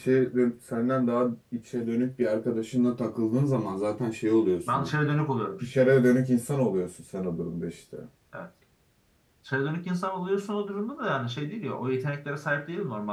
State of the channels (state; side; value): identical; both; correlation 1.00